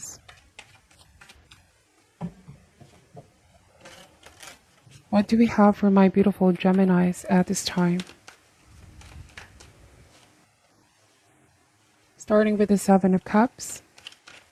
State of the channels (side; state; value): both; identical; correlation 1.00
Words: What do we have for my beautiful Geminis at this time? Starting with the Seven of Cups,